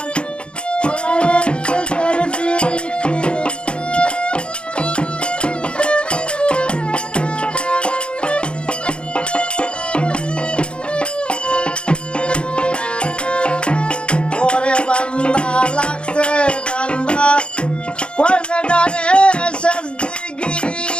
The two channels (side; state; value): right; late; 0.056 ms